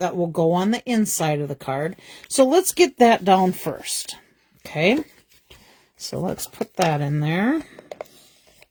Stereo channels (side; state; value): both; identical; correlation 1.00